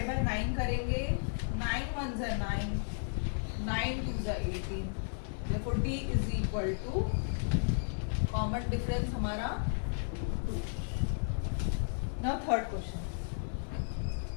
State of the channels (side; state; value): right; silent; 55 dB below the other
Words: बाय 9 करेंगे, 9 1 ज़ा 9, 9 2 ज़ा 18, therefore D is equal to, common difference हमारा 2. Now third question.